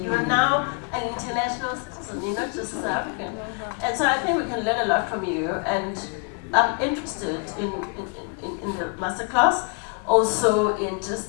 You're now an international citizen, you're not just South African. And so I think we can learn a lot from you, and I'm interested in the masterclass, also in just,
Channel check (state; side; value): quieter; right; 35.2 dB